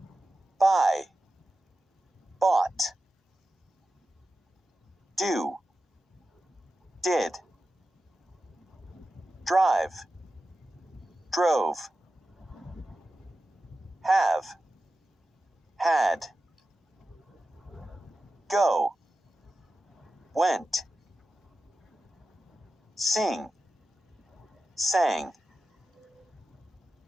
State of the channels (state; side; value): normal; both; correlation 0.92